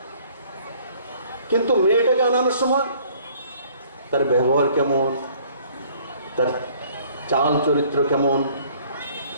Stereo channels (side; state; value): both; inverted; correlation -0.57